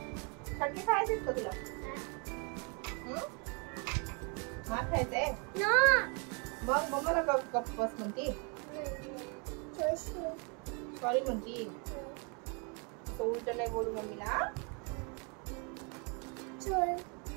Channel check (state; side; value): quieter; left; 35.0 dB